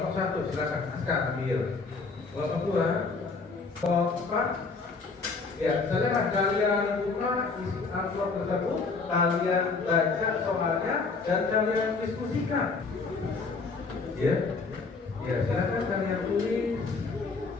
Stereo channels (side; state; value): right; quieter; 4.3 dB